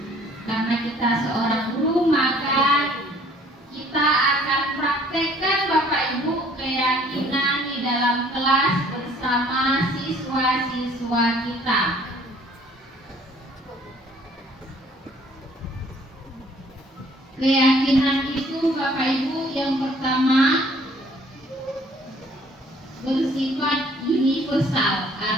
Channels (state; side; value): normal; both; correlation 0.58